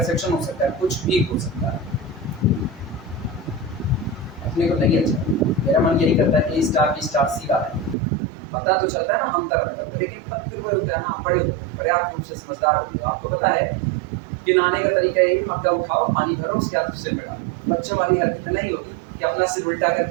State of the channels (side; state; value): left; drops out; at 8.0 s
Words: हो सकता है, कुछ भी हो सकता है, अपने को नहीं अच्छा, मेरा मन यही करता है कि स्टार बी स्टार सी वाला है, पता तो चलता है ना हम तरफ, लेकिन फिर कोई होता है ना, बड़े पर्याप्त रूप से समझदार होते हो, आपको पता है कि नहाने का तरीका है, मग्गा उठाओ, पानी भरो, उसके बाद सिर में डालो, बच्चों वाली हरकत नहीं होगी कि अपना सिर उल्टा